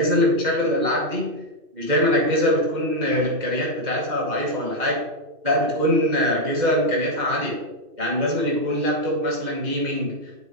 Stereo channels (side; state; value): left; late; 2.6 ms